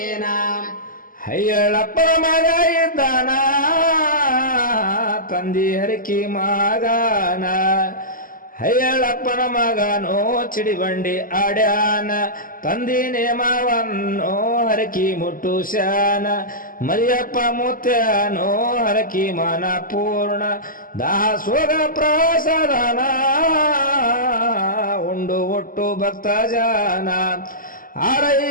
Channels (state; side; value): late; right; 0.41 ms